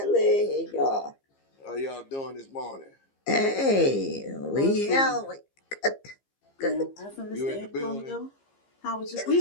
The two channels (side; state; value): right; late; 15 ms